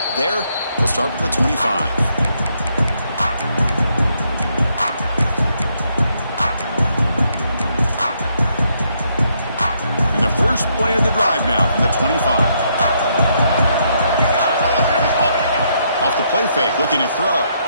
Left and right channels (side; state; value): both; inverted; correlation -0.74